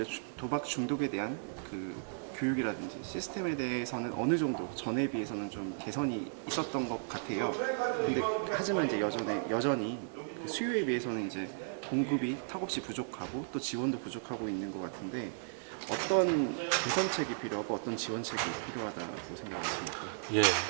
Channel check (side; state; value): left; silent; digital silence